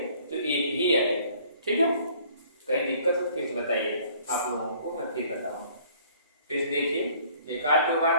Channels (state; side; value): inverted; both; correlation -0.56